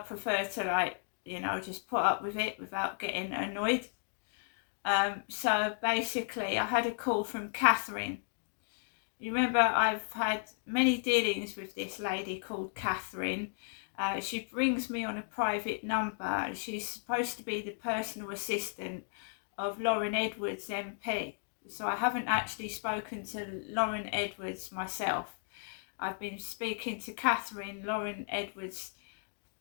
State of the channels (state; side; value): silent; right; digital silence